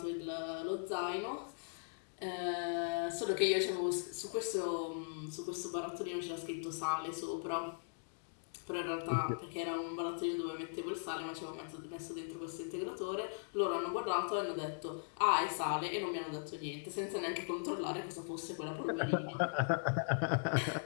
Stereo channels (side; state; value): right; silent; digital silence